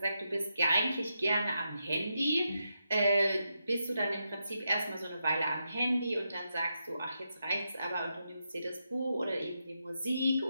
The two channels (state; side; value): inverted; both; correlation -0.85